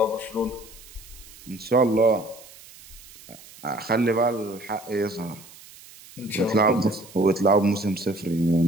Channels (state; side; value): noise; right; hiss, 20 dB below the sound